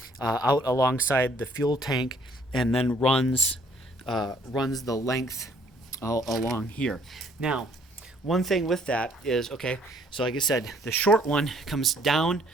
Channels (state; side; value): normal; both; correlation 0.62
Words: out alongside the fuel tank, and then runs the length along here. Now, one thing with that is, okay, so like I said, the short one comes down